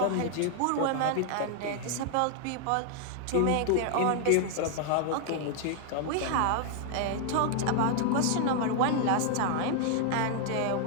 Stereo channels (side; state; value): both; different; correlation 0.00